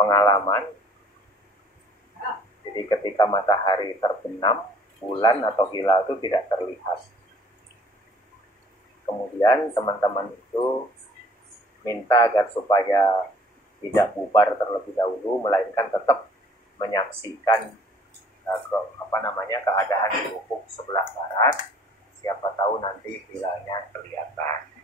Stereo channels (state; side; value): normal; both; correlation 0.55